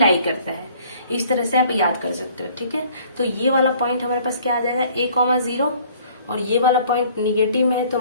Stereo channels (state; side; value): inverted; both; correlation -0.56